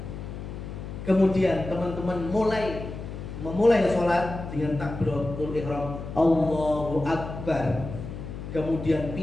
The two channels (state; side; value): noise; left; hum, 9 dB below the sound